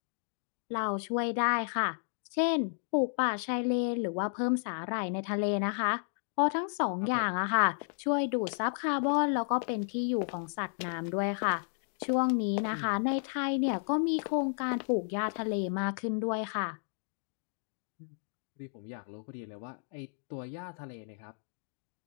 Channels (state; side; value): silent; right; digital silence